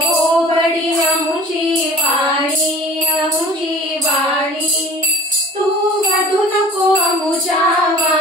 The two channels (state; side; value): normal; both; correlation 0.44